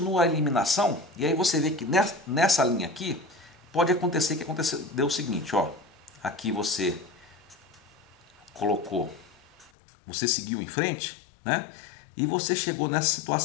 a eliminação e aí você vê que nessa linha aqui pode acontecer que deu o seguinte, ó. Aqui você colocou, você seguiu em frente, né? E você chegou nessa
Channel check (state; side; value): drops out; right; at 9.7 s